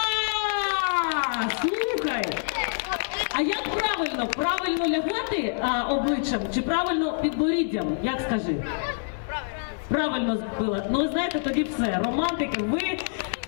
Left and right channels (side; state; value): right; silent; digital silence